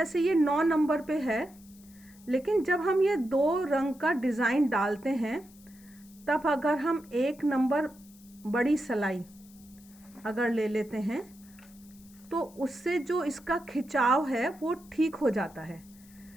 ये 9 नंबर पे है, लेकिन जब हम ये 2 रंग का डिज़ाइन डालते हैं तब अगर हम 1 नंबर बड़ी सलाई अगर ले लेते हैं तो उससे जो इसका खिंचाव है वो ठीक हो जाता है।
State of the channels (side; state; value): left; noise; hiss, 25 dB below the sound